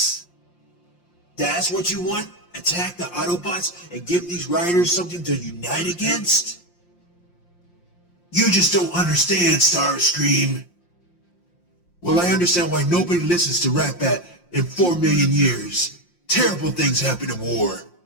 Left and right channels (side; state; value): right; late; 5.7 ms